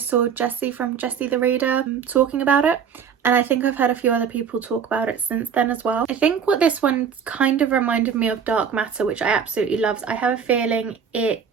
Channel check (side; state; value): left; quieter; 7.1 dB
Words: Jessie from Jessie the Reader talking about it. And I think I've heard a few other people talk about it since then as well. I think what this one kind of reminded me of Dark Matter, which I absolutely loved. I have a feeling